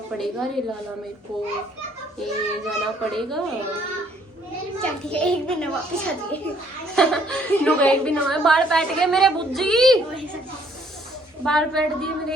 पड़ेगा रे लाला मेरे को ये जाना पड़ेगा। चल ठीक है एक दिन वापस आ जाइए। लोग एक दिन हमारे बाल पैट गए मेरे बुज्जी बाल पैट दिए मेरे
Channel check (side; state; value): both; normal; correlation 0.64